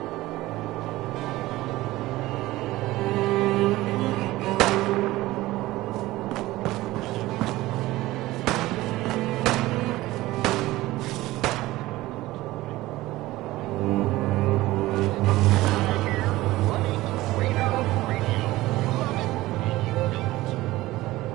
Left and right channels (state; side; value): quieter; left; 17.7 dB